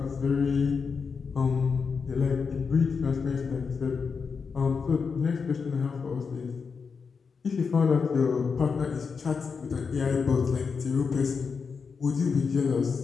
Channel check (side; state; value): right; quieter; 5.5 dB